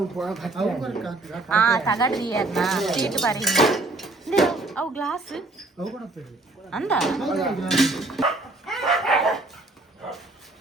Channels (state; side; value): quieter; left; 3.0 dB